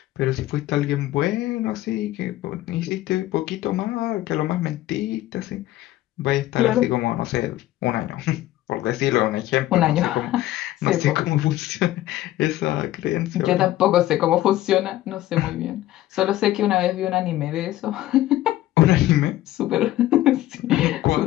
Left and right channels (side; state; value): right; quieter; 15.0 dB